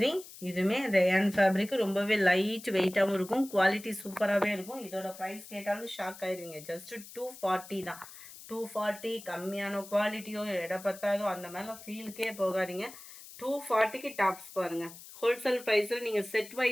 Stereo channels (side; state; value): left; noise; hiss, 16 dB below the sound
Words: இதுவுமே ரேயான் ஃபேப்ரிக்கு ரொம்பவே லைட் வெயிட்டாகவும் இருக்கும். குவாலிட்டி சூப்பராகவே இருக்கும். இதோட ப்ரைஸ் கேட்டாலும் ஷாக் ஆயிடுவீங்க. ஜஸ்ட் 240 தான். 240 கம்மியான குவாலிட்டியோ எடை பத்தாதோ அந்த மாதிரிலாம் ஃபீலுக்கே போகாதீங்க. 240க்கு டாப்ஸ் பாருங்கள். ஹோல்சேல் ப்ரைஸில் நீங்கள் செட்